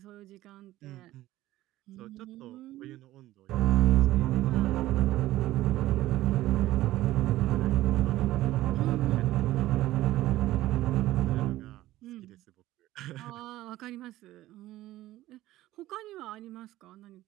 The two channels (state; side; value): quieter; left; 15.7 dB